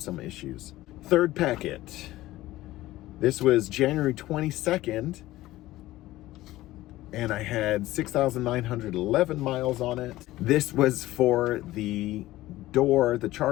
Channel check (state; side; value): quieter; right; 16.5 dB